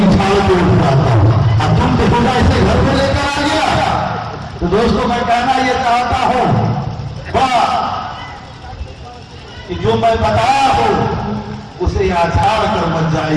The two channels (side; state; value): both; identical; correlation 1.00